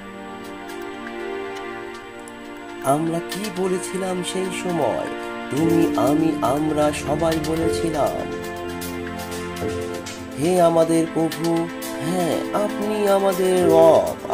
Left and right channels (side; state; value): both; identical; correlation 1.00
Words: আমরা কি বলেছিলাম সেই সময়? তুমি, আমি, আমরা সবাই বলেছিলাম, হে আমাদের প্রভু, হ্যাঁ আপনি আমাদের রব,